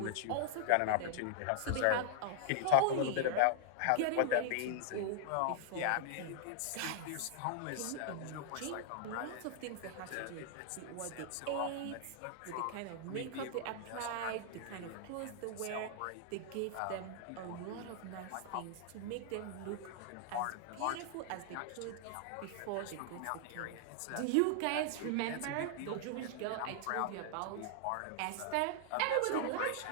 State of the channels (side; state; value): both; different; correlation -0.01